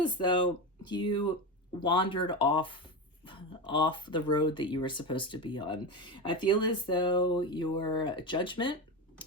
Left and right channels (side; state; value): both; normal; correlation 0.18